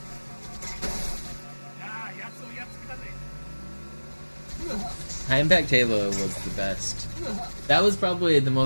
High Impact Halo was the best. That was probably the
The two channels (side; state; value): both; inverted; correlation -1.00